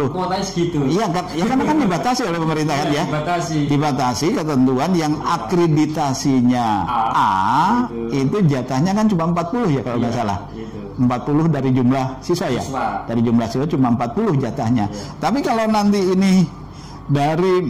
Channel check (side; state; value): both; identical; correlation 1.00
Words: kuotanya segitu. Iya kan dibatasi oleh pemerintah kan ya, dibatasi ketentuan yang akreditasinya A itu jatahnya kan cuma 40 ya kalau nggak salah, 40 dari jumlah siswa ya, dari jumlah siswa cuma 40 jatahnya. Tapi kalau nanti ini